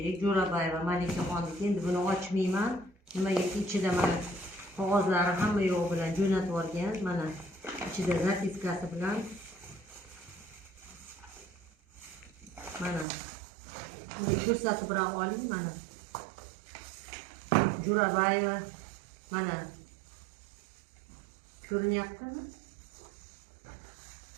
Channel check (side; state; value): left; drops out; at 13.1 s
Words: Jo'rabayeva Malikaxonniki. Endi buni ochmayman. Nimagaki ichida mana qog'ozlari hamma yo'q bilan jo'natib olgan. Mana ichida zapiskasi bilan mana buni ko'rsatib ham oling. Mana Jo'rabayeva mana ko'rinyaptimi?